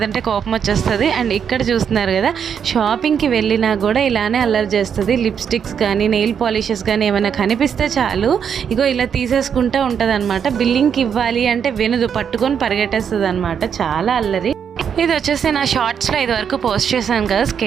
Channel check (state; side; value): quieter; left; 7.6 dB